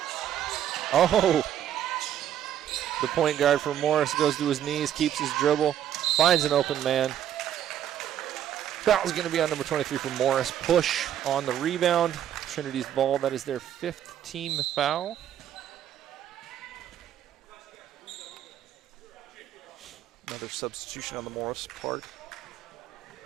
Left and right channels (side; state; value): left; quieter; 10.6 dB